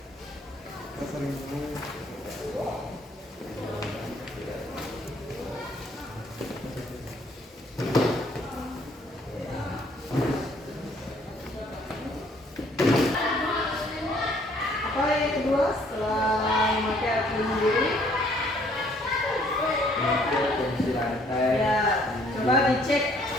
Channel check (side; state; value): both; normal; correlation 0.62